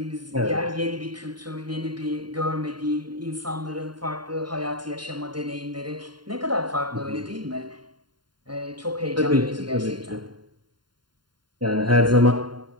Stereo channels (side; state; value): left; late; 0.71 ms